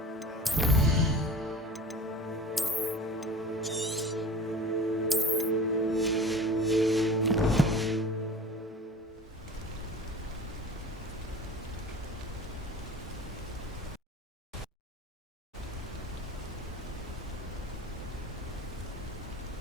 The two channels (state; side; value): normal; both; correlation 0.39